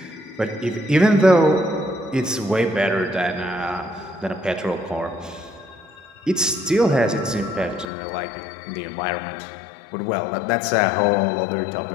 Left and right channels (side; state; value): right; drops out; at 7.9 s